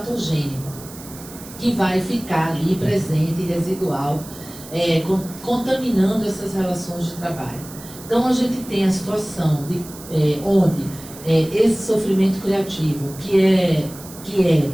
que vai ficar ali presente e residual, contaminando essas relações de trabalho. Então, a gente tem a situação de, onde esse sofrimento criativo, que é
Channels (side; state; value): right; noise; hiss, 17 dB below the sound